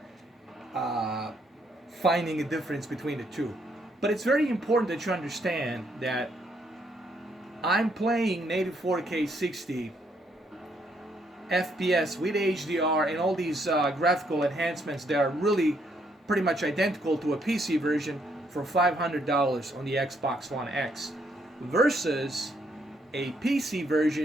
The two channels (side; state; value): both; normal; correlation 0.72